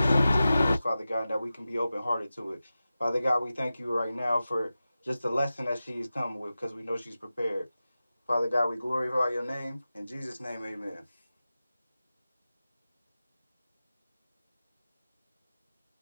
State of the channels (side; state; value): both; inverted; correlation -0.94